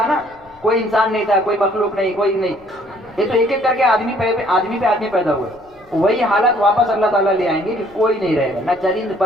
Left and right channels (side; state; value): left; noise; rumble, 30 dB below the sound